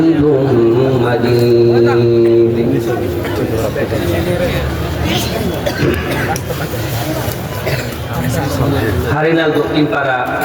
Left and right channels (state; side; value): identical; both; correlation 1.00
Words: مجيد Harinal Dakshinpara